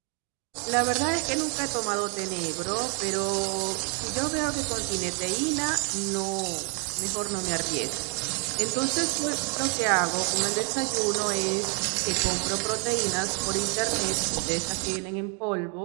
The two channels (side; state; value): left; quieter; 38.1 dB